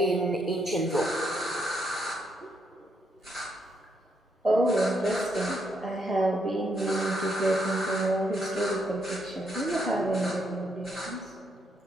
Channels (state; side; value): normal; both; correlation 0.76